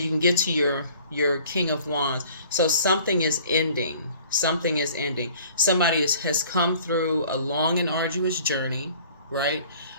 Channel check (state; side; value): inverted; both; correlation -0.51